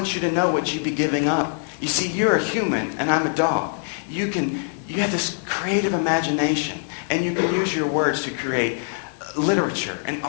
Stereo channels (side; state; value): right; silent; 63 dB below the other